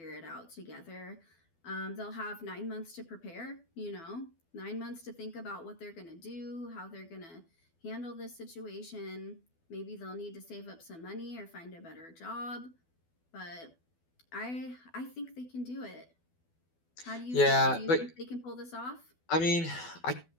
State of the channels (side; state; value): right; late; 12 ms